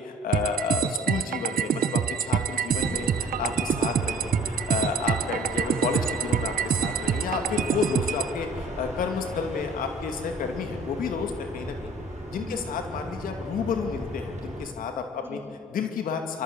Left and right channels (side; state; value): both; normal; correlation 0.48